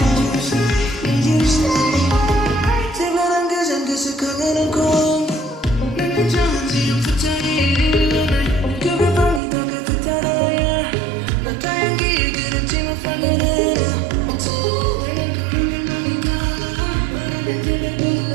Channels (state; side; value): drops out; left; at 9.4 s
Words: you to stay, need you to stay 특별한 그전 그슥하게는 공 난 정한지 좀 붙잡이